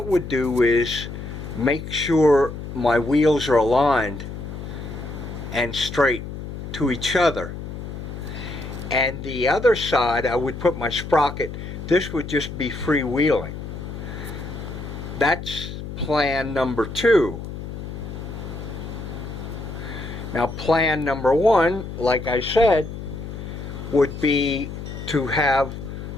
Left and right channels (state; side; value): noise; left; hum, 9 dB below the sound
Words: would do is make sure my wheels are aligned and straight to each other. And the other side I would put my sprocket. This would just be freewheeling. That's plan number 2. Now plan number 1, like I said, would be to have